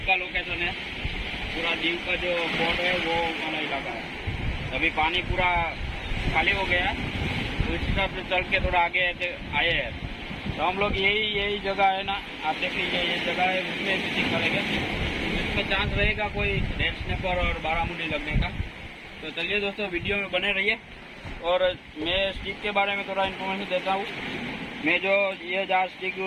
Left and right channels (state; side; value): identical; both; correlation 1.00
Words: का लोकेशन है। पूरा दीव का जो पोर्ट है वो वाला इलाका है। अभी पानी पूरा खाली हो गया है, तो इस हिसाब से चल के थोड़ा आगे आए हैं। तो हम लोग यही जगह है ना, आप देख लीजिए ये जगह है, उसमें शूटिंग करेंगे। इसमें चांस रहेगा कोई रेड स्नैपर और बारामुंडी लगने का। तो चलिए दोस्तों वीडियो में बने रहिए। और मैं स्टिक के बारे में थोड़ा इन्फॉर्मेशन देता हूँ। मैं जो ये जहाँ स्टिक